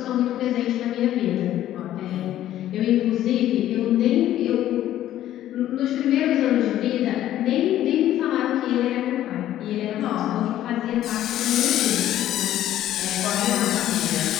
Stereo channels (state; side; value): quieter; right; 12.7 dB